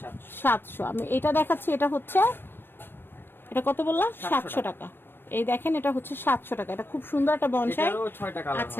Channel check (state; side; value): late; right; 0.099 ms